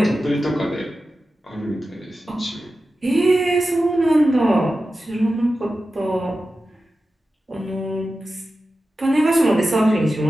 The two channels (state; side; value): normal; both; correlation 0.93